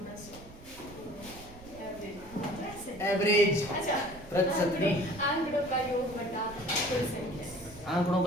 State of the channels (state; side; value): noise; right; rumble, 19 dB below the sound